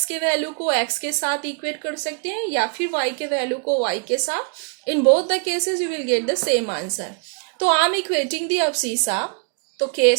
के value को x के साथ equate कर सकते हैं या फिर y के वैल्यू को y के साथ. In both the cases you will get the same answer. तो I am equating the abscissa. तो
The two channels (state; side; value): quieter; left; 38.2 dB